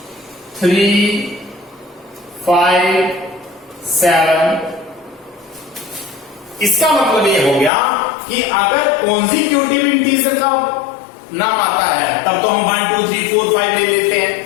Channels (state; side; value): drops out; right; at 7.7 s